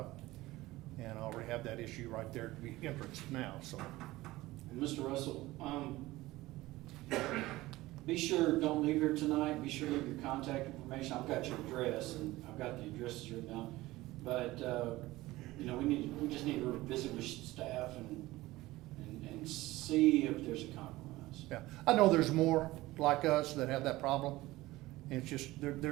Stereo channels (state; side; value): quieter; left; 18.3 dB